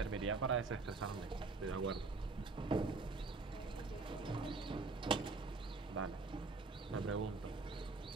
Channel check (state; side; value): quieter; left; 3.8 dB